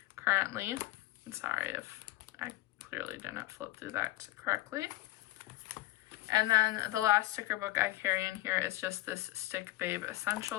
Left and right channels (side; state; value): right; quieter; 17.7 dB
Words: currently. I'm sorry if I clearly didn't flip through that correctly. And then the last sticker book I carry in here is just this Stick Babe